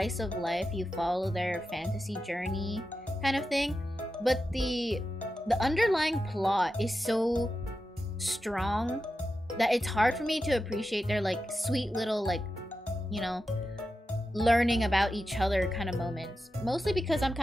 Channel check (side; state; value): both; normal; correlation 0.90